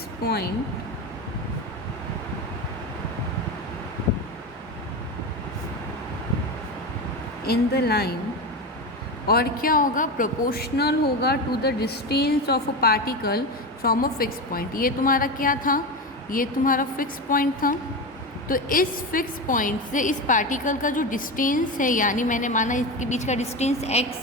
point in the line. और क्या होगा, प्रोपोर्शनल होगा to the distance of a particle from a fix point. ये तुम्हारा क्या था, ये तुम्हारा फिक्स पॉइंट था। तो इस फिक्स पॉइंट से इस पार्टिकल का जो डिस्टेंस है, यानी मैंने माना इसके बीच का डिस्टेंस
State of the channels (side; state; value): both; normal; correlation 0.20